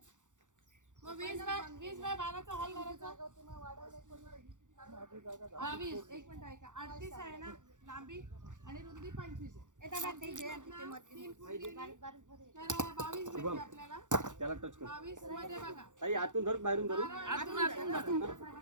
मग 20 बाय 12चा हॉल करायचा 22 एक मिनिट ऐका 38 आहे ना लांबी आणि रुंदी 25 आहे तर 22 भेटते आपल्याला त्याला टच कर 22 मध्ये बघा ताई आतून धर बाहेरून धरू आतून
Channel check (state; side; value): late; left; 0.86 ms